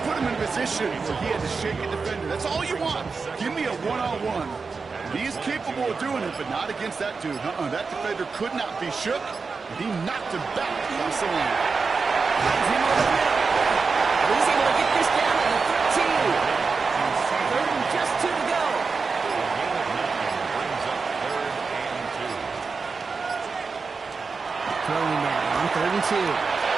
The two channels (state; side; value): quieter; left; 4.7 dB